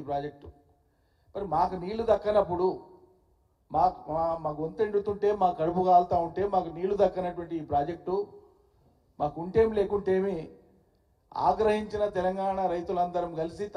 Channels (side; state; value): both; identical; correlation 1.00